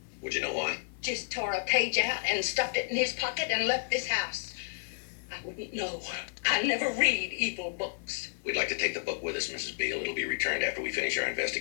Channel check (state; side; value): silent; right; 57 dB below the other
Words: Would you know why? Just tore a page out and stuffed it in his pocket and left this house. I wouldn't know. I never read evil books. We'd like to take the book with us, Mrs. Beale. It'll be returned after we finish our